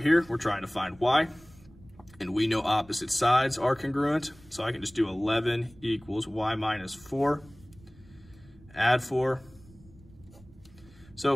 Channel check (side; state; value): right; noise; rumble, 24 dB below the sound